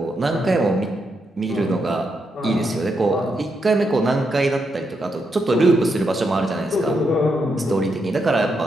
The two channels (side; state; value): both; normal; correlation 0.81